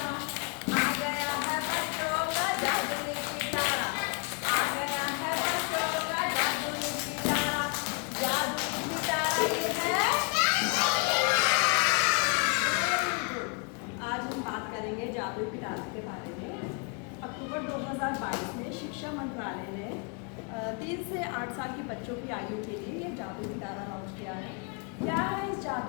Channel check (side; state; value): right; quieter; 36.0 dB